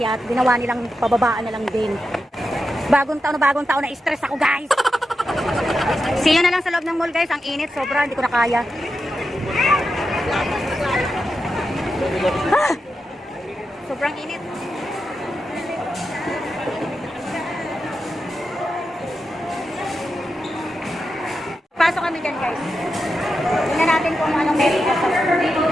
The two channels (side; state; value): both; normal; correlation 0.89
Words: ginawa nilang pababaan na lang din. Bagong taon na stress ako guys. See you na lang sa loob ng mall guys, ang init, sobra, hindi ko na kaya. Ah! Sobrang init. Papasok kami dyan, guys. Tingnan natin kung anong meron pa sa